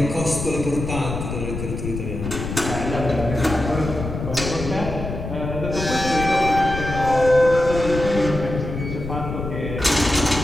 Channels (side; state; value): left; noise; rumble, 6 dB below the sound